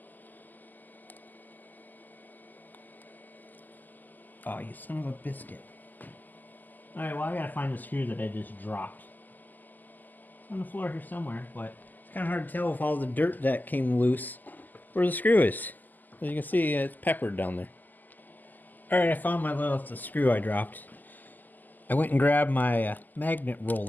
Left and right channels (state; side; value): late; right; 0.085 ms